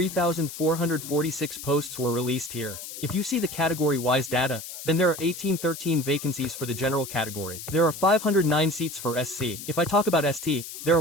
posts were released here. If you see the category-wise data, then there are 1813 vacancies for the general category. There are 509 seats for SC. If I talk about ST, there are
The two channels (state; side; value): noise; left; hiss, 10 dB below the sound